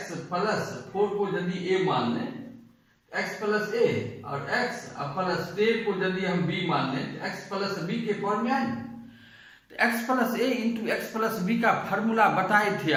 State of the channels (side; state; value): both; identical; correlation 1.00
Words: प्लस 4 को यदि a मान लें, x प्लस ए, और x प्लस 10 को यदि हम b मान लें तो x प्लस बी के फॉर्म में आए। तो x plus a into x plus B का फॉर्मूला बताए थे